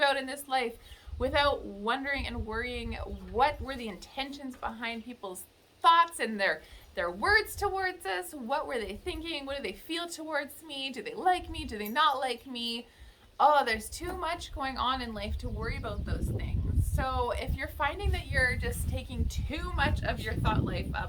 in this life without wondering and worrying what were the intentions behind people's thoughts and their words towards us. What were they thinking? What do they feel towards me? Do they like me? Do they not like me? Oh, there's too much going on in life to worry about those things. So if you're finding that you're just taking too much of your thought life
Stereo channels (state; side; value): identical; both; correlation 1.00